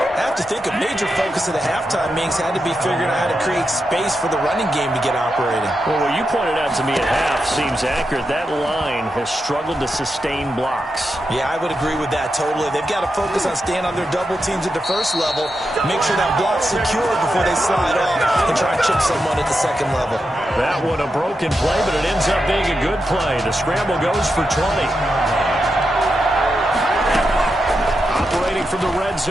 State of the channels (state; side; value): normal; both; correlation 0.87